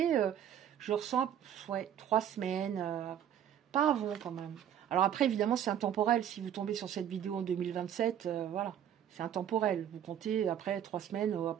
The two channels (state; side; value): quieter; left; 9.9 dB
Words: je ressens, ouais, 3 semaines. Pas avant, quand même. Alors après, évidemment, c'est intemporel. Si vous tombez sur cette vidéo en 2027, voilà. C'est intemporel. Vous comptez après 3 semaines à